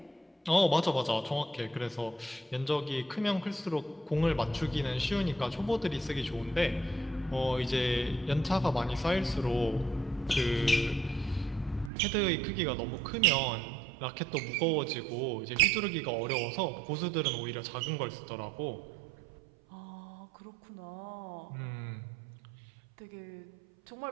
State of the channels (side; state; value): left; drops out; at 11.9 s